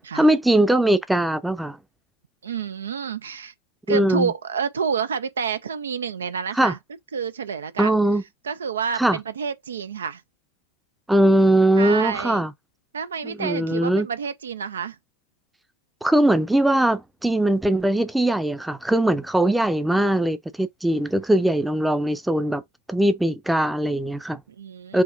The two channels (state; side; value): normal; both; correlation 0.76